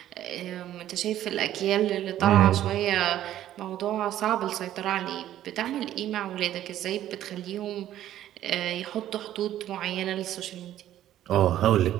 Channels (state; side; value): quieter; left; 12.4 dB